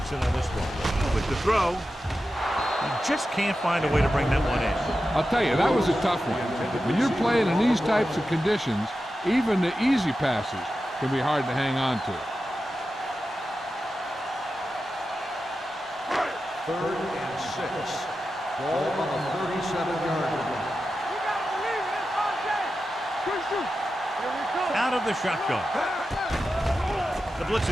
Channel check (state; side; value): normal; both; correlation 0.91